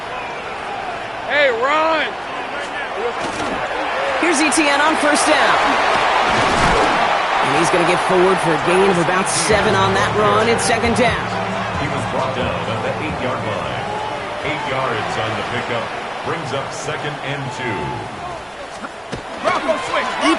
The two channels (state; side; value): identical; both; correlation 1.00